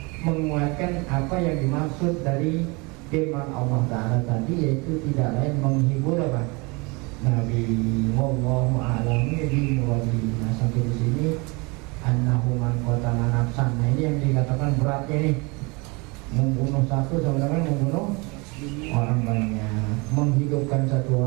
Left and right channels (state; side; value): quieter; left; 27.7 dB